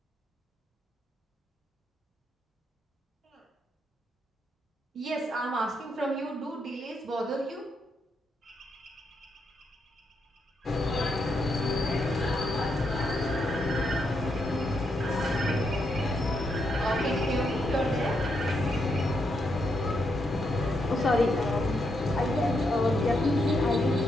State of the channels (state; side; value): normal; both; correlation 0.80